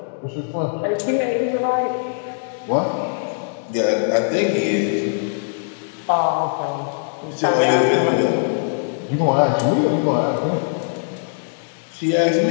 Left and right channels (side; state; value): right; silent; digital silence